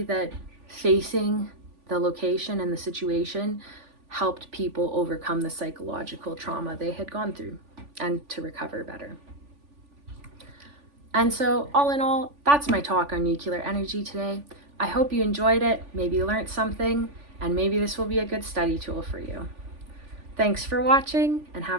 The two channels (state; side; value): late; left; 3.5 ms